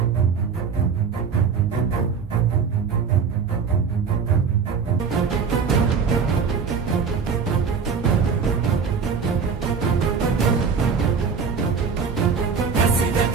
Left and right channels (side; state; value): left; quieter; 5.9 dB